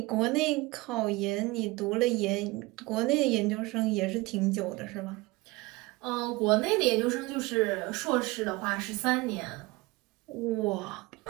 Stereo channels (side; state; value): left; quieter; 22.2 dB